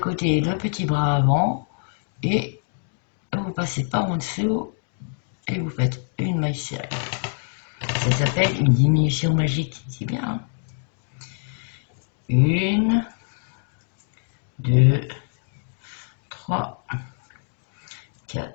le petit bras avant, et vous passez par en dessous et vous faites une maille serrée. Ça s'appelle une diminution magique, c'est bien. 1, 2, 3,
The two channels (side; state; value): right; silent; digital silence